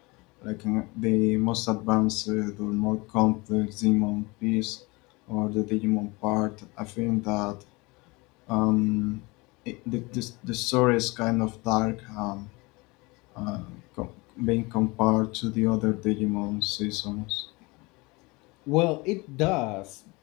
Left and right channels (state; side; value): quieter; right; 25.0 dB